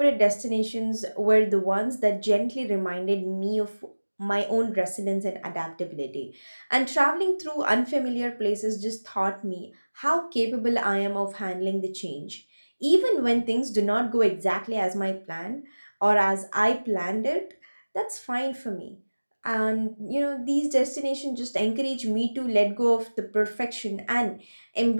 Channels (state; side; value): inverted; both; correlation -1.00